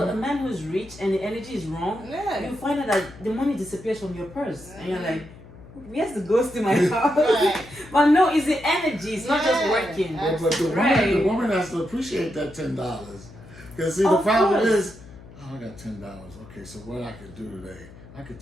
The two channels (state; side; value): noise; left; hum, 19 dB below the sound